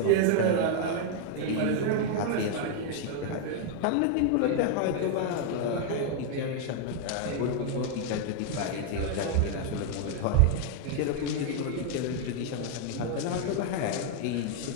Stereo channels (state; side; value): different; both; correlation 0.00